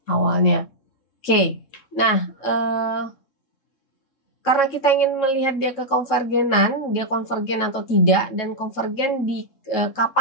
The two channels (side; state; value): right; late; 3.7 ms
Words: awalnya. Oke, nah karena kita ingin melihat dia kekonvergenan, dia konvergen atau tidak, dan konvergen di